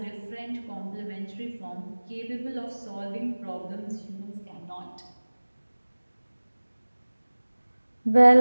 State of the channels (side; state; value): both; inverted; correlation -1.00